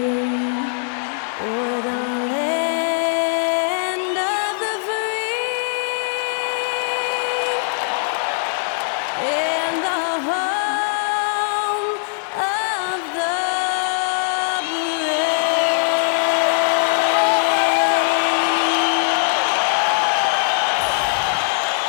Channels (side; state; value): right; silent; digital silence